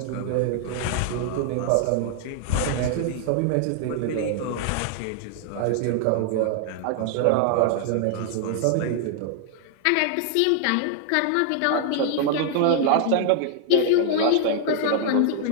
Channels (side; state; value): both; different; correlation 0.00